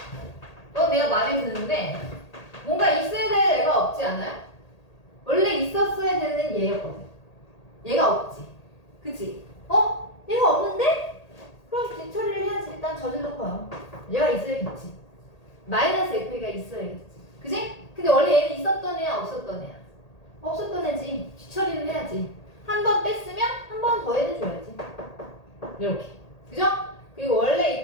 넌 내가 마음에 드는데 뭔가 있어야 될 애가 없지 않아요? 원래 있었어야 되는 얘였거든. 얘가 없지. 그치? 얘가 없는데? 그럼 뒤처리를 해야지. 일단 저질러 봐요. 얘가 있어야겠지. 마이너스 FA가 있어야겠지. 그치? 근데 원래 얘는 있었던 애야 없었던 애야? 없었던 애지. 뒤처리를 해야지. 한 번 뺐으면 한 번 더 해줘야지. 이렇게. 그죠? 그리고 원래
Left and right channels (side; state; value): right; late; 1.8 ms